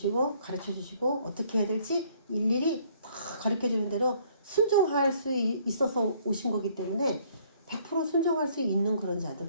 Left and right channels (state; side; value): inverted; both; correlation -0.62